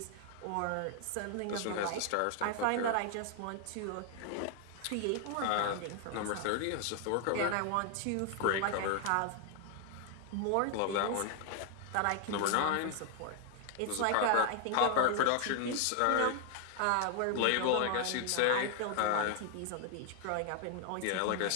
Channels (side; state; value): both; different; correlation 0.00